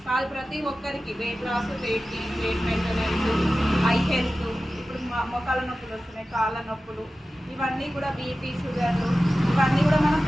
కాదు. ప్రతి ఒక్కరికి weight loss, weight gain, weight maintenance, eye health, ఇప్పుడు మొక్కల నొప్పులు వస్తున్నాయి, కాళ్ళ నొప్పులు, ఇవన్నీ కూడా బీపీ, షుగర్లు, ఇవన్నీ కూడా మనం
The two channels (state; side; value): normal; both; correlation 0.95